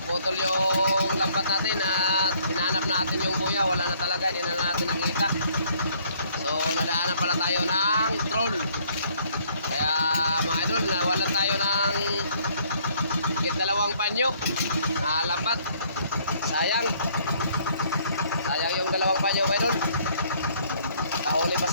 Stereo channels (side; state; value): both; inverted; correlation -0.63